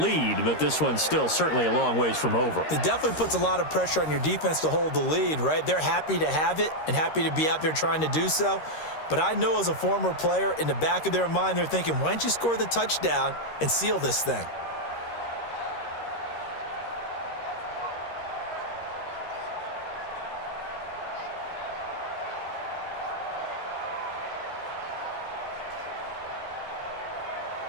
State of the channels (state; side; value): late; right; 13 ms